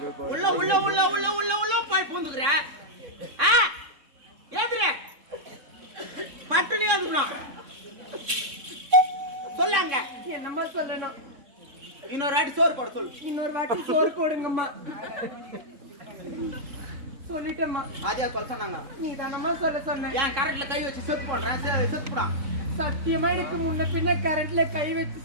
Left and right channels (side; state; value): left; late; 3.6 ms